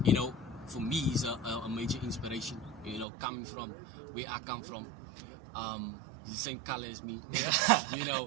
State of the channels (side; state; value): left; drops out; at 3.1 s